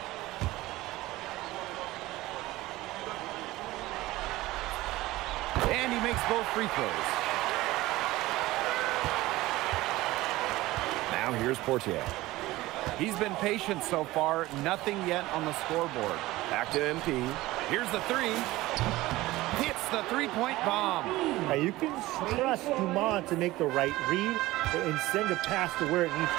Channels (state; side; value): quieter; left; 18.1 dB